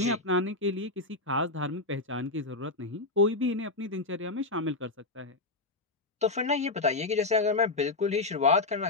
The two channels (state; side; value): quieter; right; 3.2 dB